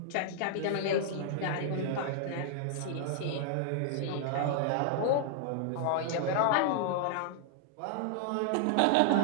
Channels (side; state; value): both; different; correlation -0.01